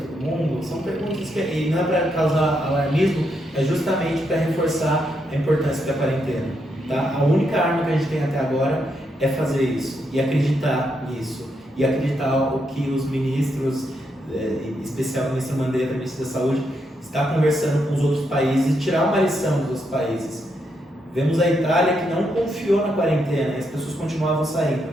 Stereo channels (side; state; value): both; normal; correlation 0.80